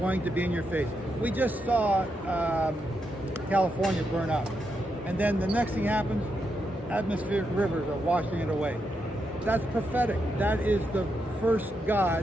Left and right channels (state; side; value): normal; both; correlation 0.83